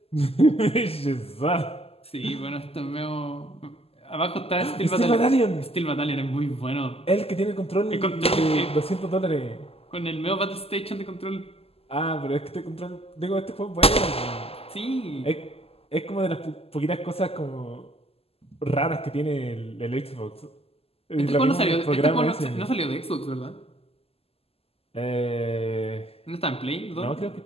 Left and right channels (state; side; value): late; right; 0.29 ms